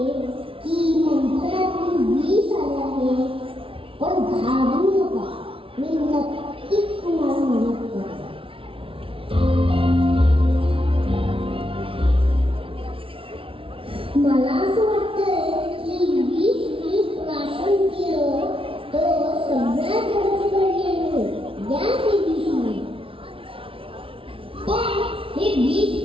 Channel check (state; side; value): late; left; 0.26 ms